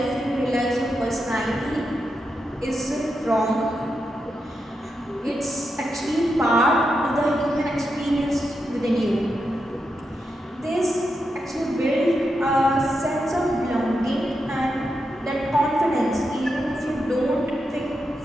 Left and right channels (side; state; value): both; normal; correlation 0.86